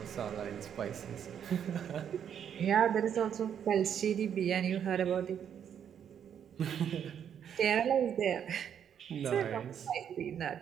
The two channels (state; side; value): quieter; left; 8.7 dB